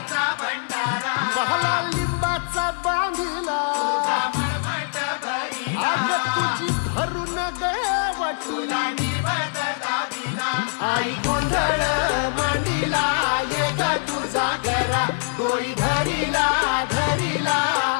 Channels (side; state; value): right; silent; digital silence